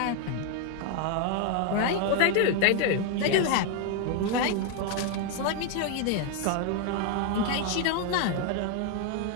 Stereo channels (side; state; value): both; different; correlation 0.00